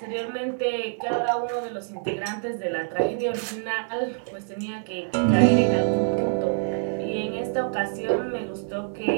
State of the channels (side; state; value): left; silent; digital silence